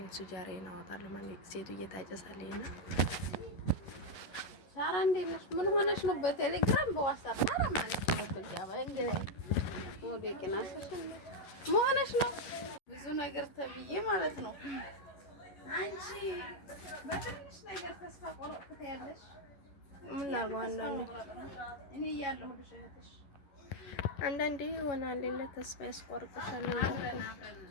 ሱጃራዬን አወጣለሁ ማለት ሴቱ እየታጨሳለኝ እና ሳራ እንዴት ነሽ? ምን ሆነሽ ነው? በቴሌግራም በዋትስአፕ ሳራ ማለት ነው በልጃባ እንግዲህ ወደ ቅናሰሽ ምን ሆነሽ ነው? ብዙ ነገር ተብዬ ማለት ነው። አንቺ በትንሽ ነገር ተስፋ ቆርጥት ያለሽ ምን ላድርገው? እኔ እያለሁ ልሽነትሽ አንዳንዴ ይሆናል ሌላ ተስፋ ያስቆርጥሻል።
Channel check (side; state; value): right; late; 11 ms